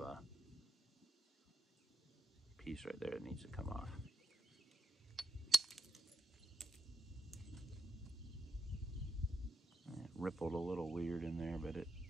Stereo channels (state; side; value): normal; both; correlation 0.84